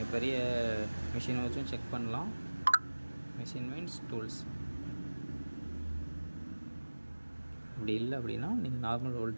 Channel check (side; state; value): both; inverted; correlation -1.00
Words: பெரிய மிஷினை வச்சும் செக் பண்ணலாம். Machine means tools. அப்படி இல்லை அப்படின்னா நீங்கள் நார்மல்